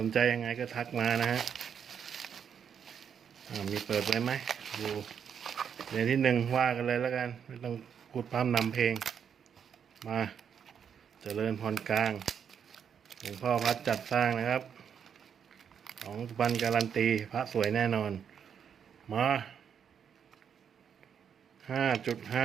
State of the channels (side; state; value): left; quieter; 7.7 dB